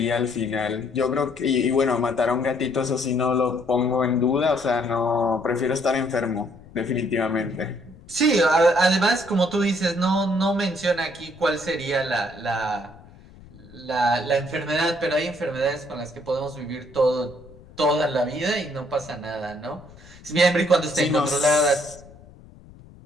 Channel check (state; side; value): noise; left; rumble, 22 dB below the sound